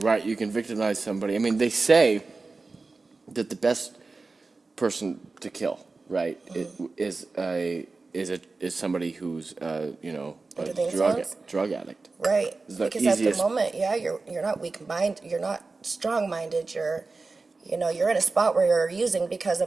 Right. You can victimize somebody. I mean, they say that the best person to kill, right, is somebody who's a Under the influence? drug addict. Right. It's the Because at the easiest- moment, yeah, you're not weak-minded, you're not strong-minded, you're in a spot where you're using because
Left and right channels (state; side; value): quieter; left; 3.8 dB